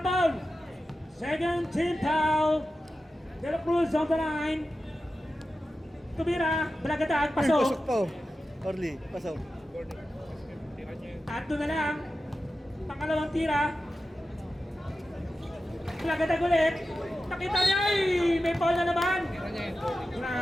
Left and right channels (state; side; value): normal; both; correlation 0.93